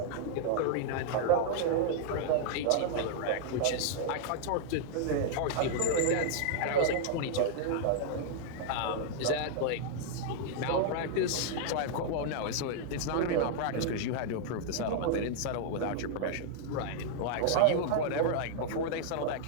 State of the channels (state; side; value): different; both; correlation -0.01